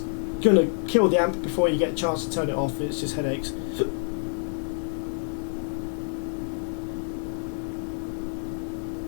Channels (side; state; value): right; silent; 60 dB below the other